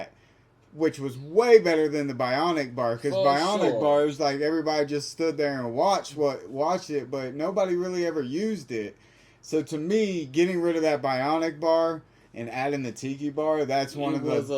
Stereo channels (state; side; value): identical; both; correlation 1.00